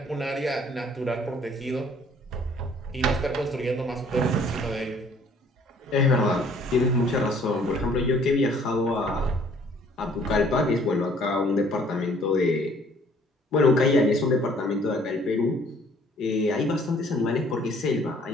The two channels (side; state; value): both; normal; correlation 0.58